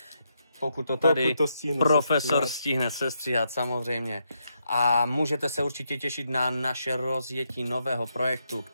pokud to tady profesor stihne sestříhat samozřejmě. A můžete se určitě těšit na naše rozjetí nového projektu,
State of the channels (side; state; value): both; inverted; correlation -0.80